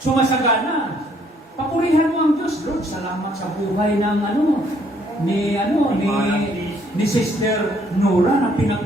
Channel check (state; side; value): normal; both; correlation 0.66